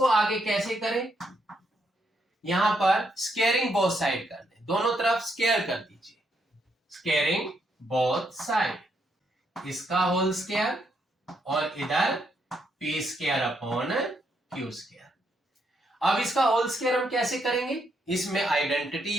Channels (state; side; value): normal; both; correlation 0.77